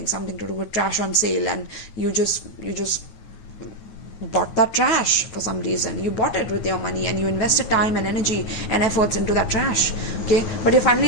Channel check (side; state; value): right; late; 9.5 ms